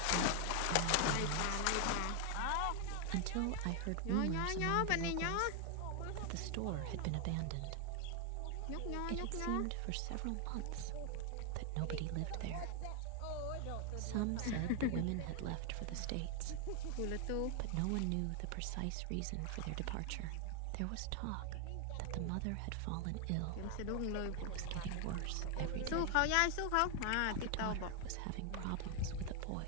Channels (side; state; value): both; different; correlation 0.00